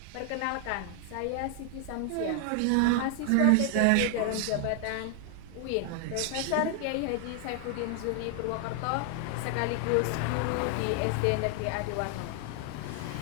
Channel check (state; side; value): different; both; correlation 0.00